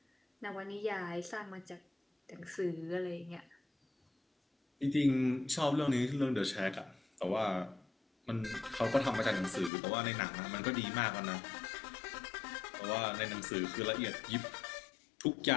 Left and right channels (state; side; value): drops out; right; at 9.7 s